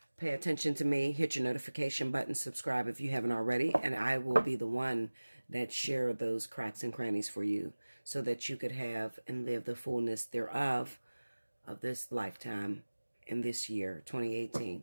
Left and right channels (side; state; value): both; inverted; correlation -1.00